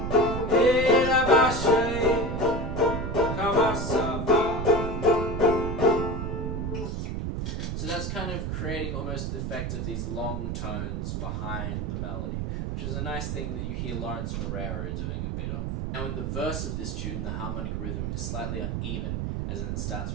E La Ba She, Kama Sa Va. So that's kind of creating almost the effect of these long tones behind the melody, which is a nice thing that you hear Lawrence Moreira doing a bit of. Now in the verse of this tune, the harmonic rhythm is slightly uneven, as in it starts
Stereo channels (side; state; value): right; noise; rumble, 2 dB below the sound